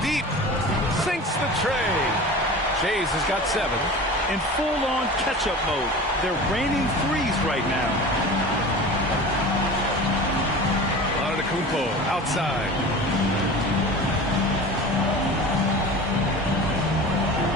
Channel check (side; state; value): both; normal; correlation 0.35